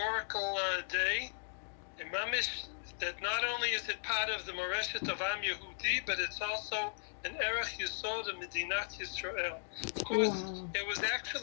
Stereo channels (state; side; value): silent; right; digital silence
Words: day. And Mamish, that not only is it part of the Moreshet of Am Yehudi, but it's also an erech yesod of Medinat Yisrael. Of course, it was